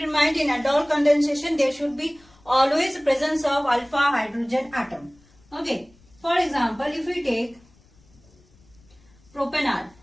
in mind, in aldol condensation there should be always presence of alpha hydrogen atom. Okay, for example, if we take propanol,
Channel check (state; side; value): noise; left; rumble, 30 dB below the sound